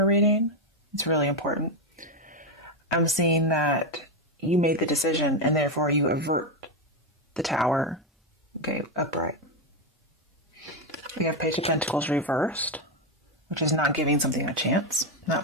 reading, it's really important. I'm seeing that you made the decision and therefore you avert the Tower, okay, upright. We have Page of Pentacles reversed, which is not giving something a chance,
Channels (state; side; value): normal; both; correlation 0.08